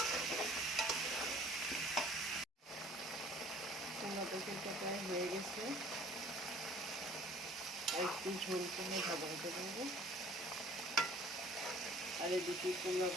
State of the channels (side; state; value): both; normal; correlation 0.52